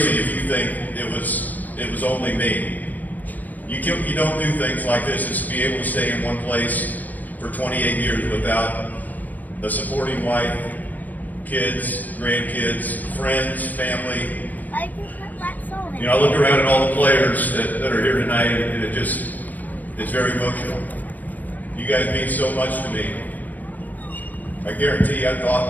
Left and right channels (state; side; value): late; right; 0.082 ms